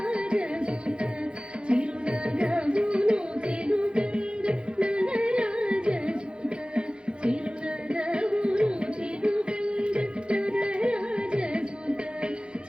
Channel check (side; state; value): left; late; 0.054 ms